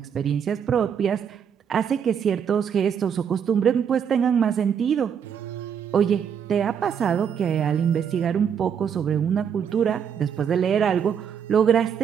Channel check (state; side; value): quieter; left; 7.8 dB